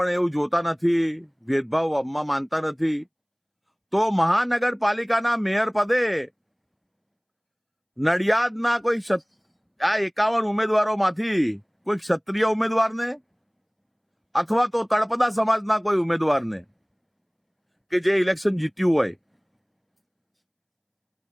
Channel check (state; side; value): identical; both; correlation 1.00